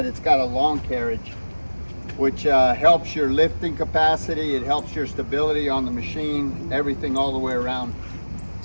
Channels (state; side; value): inverted; both; correlation -1.00